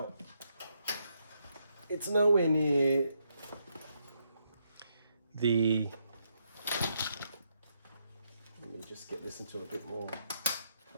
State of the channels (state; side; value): inverted; both; correlation -0.78